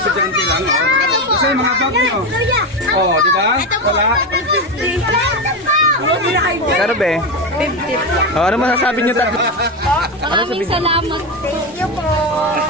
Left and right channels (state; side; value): normal; both; correlation 0.14